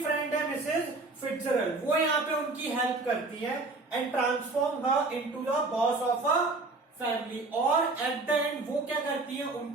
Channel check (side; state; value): left; quieter; 3.4 dB